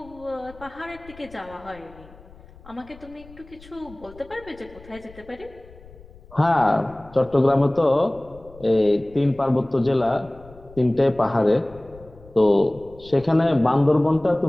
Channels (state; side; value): noise; left; rumble, 22 dB below the sound